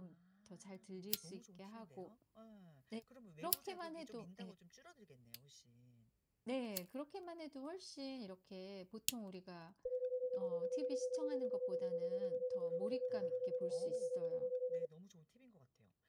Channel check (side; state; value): both; identical; correlation 1.00